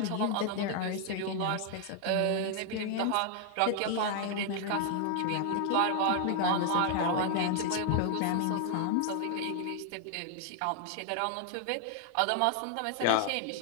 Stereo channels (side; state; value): both; different; correlation 0.00